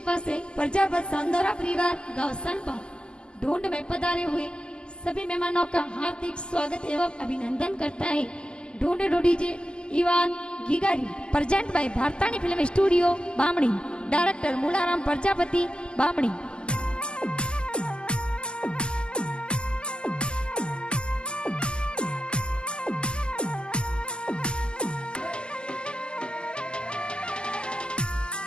से प्रजापत सांदोरा परिवार गांव सनपा ढूंढ में पधारे हुए सभी मेहमानों का हार्दिक स्वागत एवं अभिनंदन करता है। ढूंढ डीजे इवान गिगारी प्रेजेंट बाय भारतानी film studio Bamni, director Moolaram Prajapati Bamni.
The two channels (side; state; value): right; late; 0.048 ms